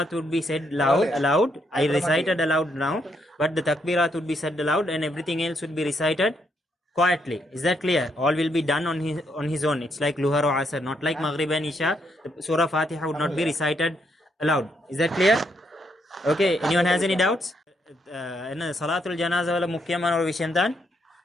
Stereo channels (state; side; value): normal; both; correlation 0.76